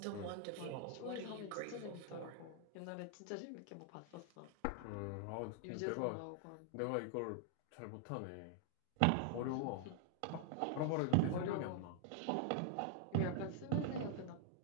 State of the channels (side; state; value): both; different; correlation 0.00